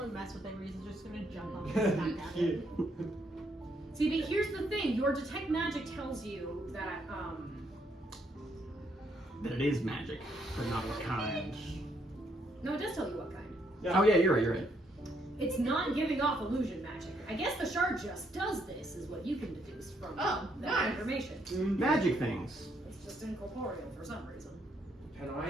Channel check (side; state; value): both; normal; correlation 0.73